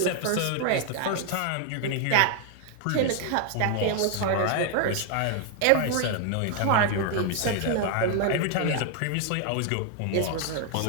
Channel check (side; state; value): both; different; correlation 0.00